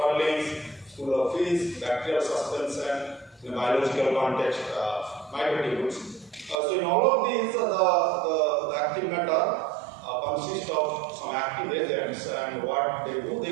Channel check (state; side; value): drops out; left; at 6.6 s